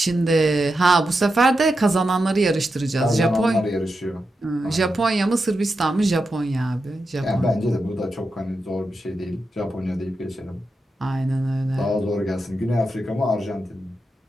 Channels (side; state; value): both; normal; correlation 0.88